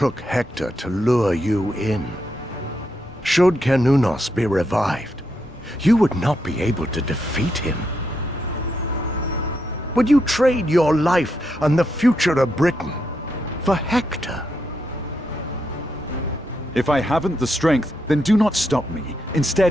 Hector to lure you in. Should Cernunnos be revived, you would not be able to defeat him. Would you trade your life and the future of Britain for Hector? If I haven't the strength, then do not stop me.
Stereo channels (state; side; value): normal; both; correlation 0.81